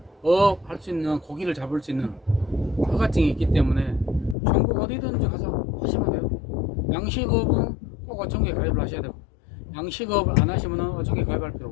할 수 있는 고기를 잡을 수 있는 허가증이 있기 때문에 전국 어디든지 가서 하시면 돼요. 양식업은 꼭 꼭 어촌계 가입을 하셔야 되고, 양식업을 안 하시면 어촌계 가입할 필요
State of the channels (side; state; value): right; drops out; at 4.4 s